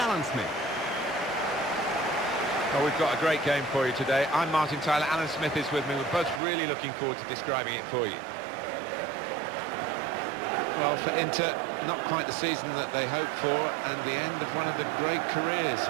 Smith. Well, we've got a great game for you today. I'm Martin Tyler, Alan Smith is with me. We're both really looking forward to describing it for you. Well, for Inter, not quite the season that they hoped for, and the end of one of the great careers,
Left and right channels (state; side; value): drops out; left; at 6.4 s